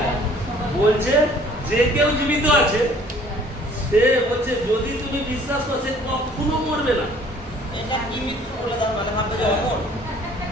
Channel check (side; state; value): both; normal; correlation 0.55